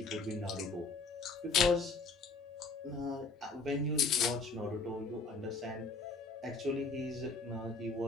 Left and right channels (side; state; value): right; quieter; 3.9 dB